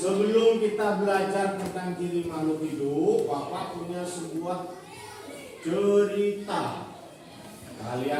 kita belajar tentang ciri makhluk hidup, Bapak punya sebuah cerita.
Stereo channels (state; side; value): identical; both; correlation 1.00